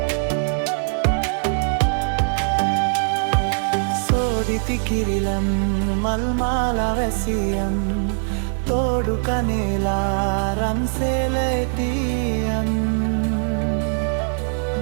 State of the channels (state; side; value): silent; left; digital silence